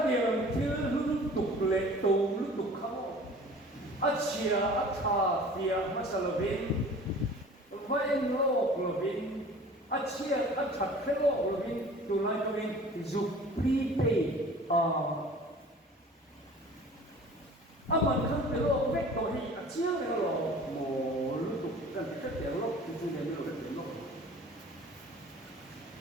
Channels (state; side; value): normal; both; correlation 0.45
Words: nhiều thiếu lúc tục lệ tù lúc tục khao chia tha phía mà sao là bên phải lo là bên chia chặt cái lo là bên tụ lại tụ bên giúp prepaid mình không thể lo vét tụ hi chiang cái lo mồ lúc tục cần cái tiền lốc thì chúng ta mới được cái tiền lốc